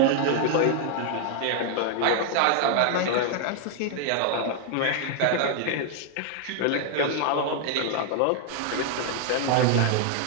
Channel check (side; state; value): both; different; correlation 0.00